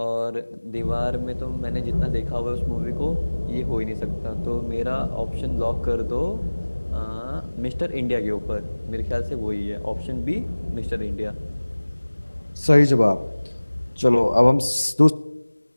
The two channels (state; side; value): inverted; both; correlation -1.00